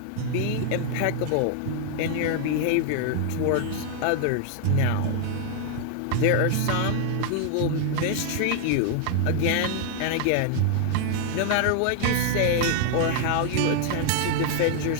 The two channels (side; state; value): both; different; correlation 0.00